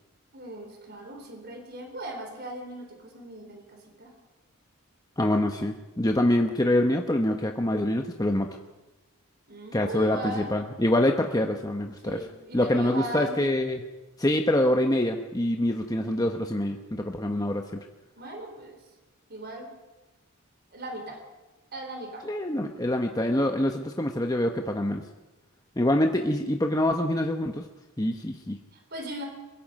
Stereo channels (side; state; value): both; normal; correlation 0.75